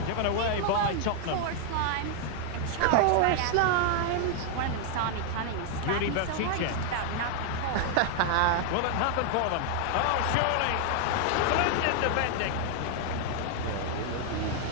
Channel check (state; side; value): different; both; correlation 0.00